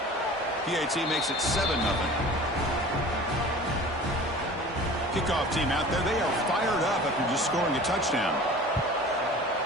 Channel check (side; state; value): both; normal; correlation 0.41